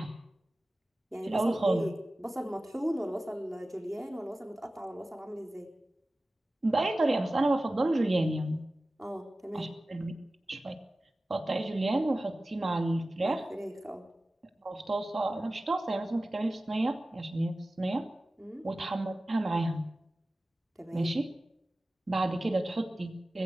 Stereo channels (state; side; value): normal; both; correlation 0.96